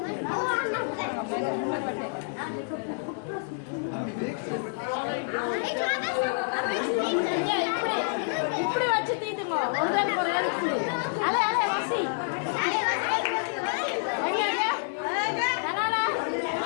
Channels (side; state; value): right; silent; digital silence